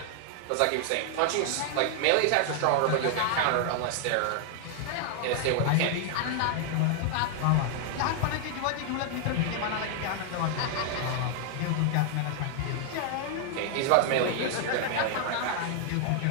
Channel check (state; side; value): different; both; correlation 0.00